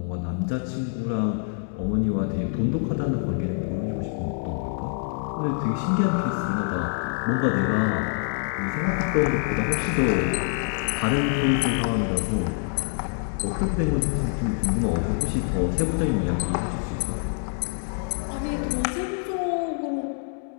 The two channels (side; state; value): right; silent; digital silence